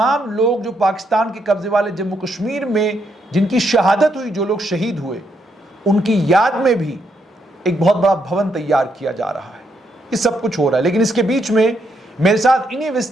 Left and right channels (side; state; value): both; normal; correlation 0.77